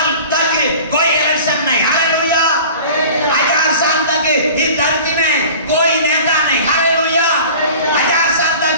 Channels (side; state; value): both; inverted; correlation -0.41